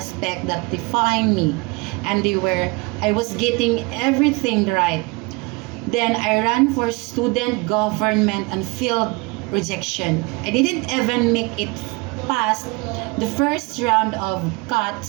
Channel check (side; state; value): left; quieter; 26.7 dB